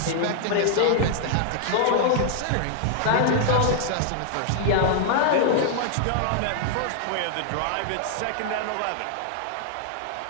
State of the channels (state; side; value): different; both; correlation -0.01